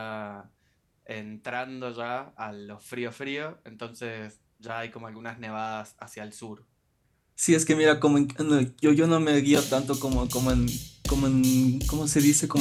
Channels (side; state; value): both; identical; correlation 1.00